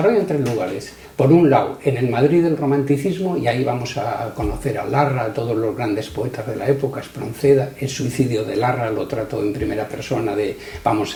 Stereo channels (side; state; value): both; identical; correlation 1.00